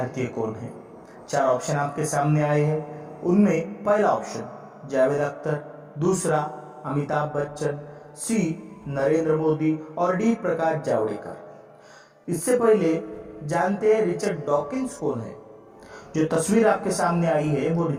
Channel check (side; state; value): both; identical; correlation 1.00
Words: कौन हैं? 4 ऑप्शन आपके सामने आए हैं। उनमें पहला ऑप्शन जावेद अख्तर, दूसरा अमिताभ बच्चन, सी नरेंद्र मोदी और डी प्रकाश जावड़ेकर। इससे पहले जानते हैं रिचर्ड डॉकिंस कौन है। जो तस्वीर आपके सामने आई है वो